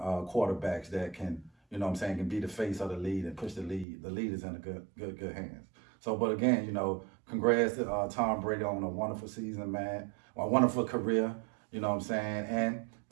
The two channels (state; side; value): drops out; left; at 3.9 s